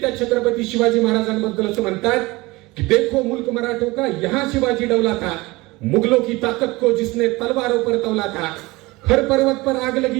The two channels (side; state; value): left; quieter; 21.9 dB